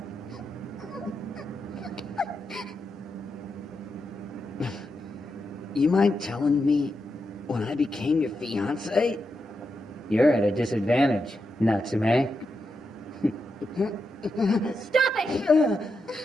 You mind telling me when I became your fiancé? You're at a disadvantage, Natsume. Stop it!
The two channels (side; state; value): both; normal; correlation 0.86